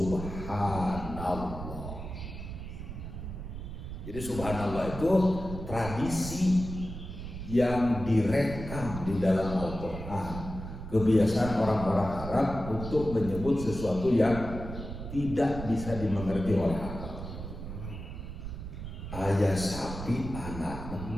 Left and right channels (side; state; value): right; noise; rumble, 8 dB below the sound